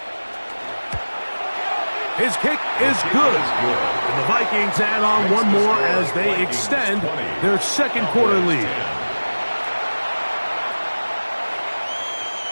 His kick is good. And the Vikings add on one more as they extend their 2nd quarter lead.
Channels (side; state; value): both; inverted; correlation -1.00